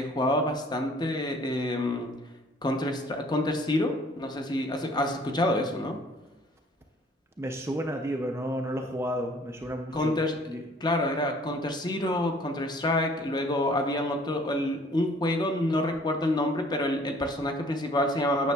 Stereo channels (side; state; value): both; normal; correlation 0.55